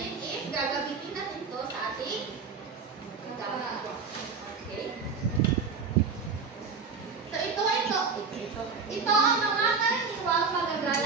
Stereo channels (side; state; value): left; quieter; 5.2 dB